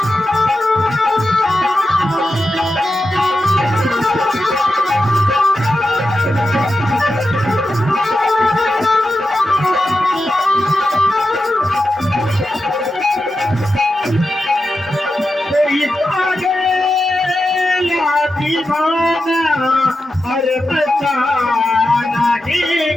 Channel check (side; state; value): both; normal; correlation 0.90